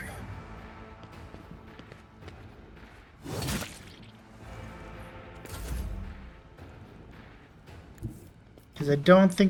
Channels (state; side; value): identical; both; correlation 1.00